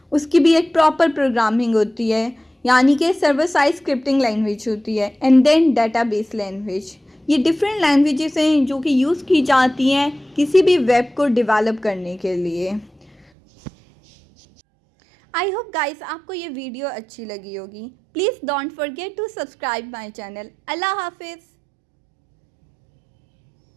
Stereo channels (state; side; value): drops out; left; at 13.2 s